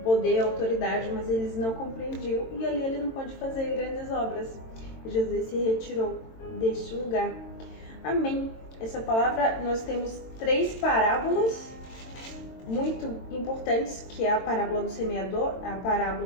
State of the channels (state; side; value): late; right; 22 ms